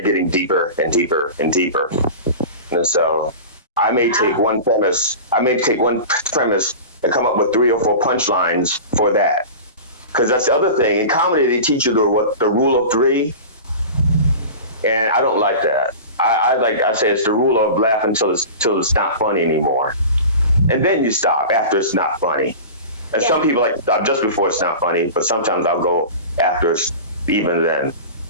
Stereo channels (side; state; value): both; inverted; correlation -0.33